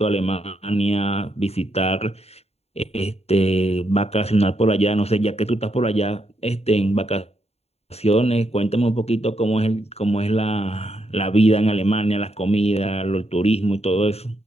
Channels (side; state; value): right; late; 0.30 ms